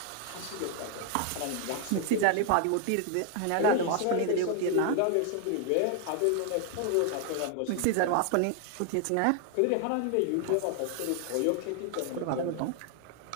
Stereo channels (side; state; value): both; different; correlation 0.00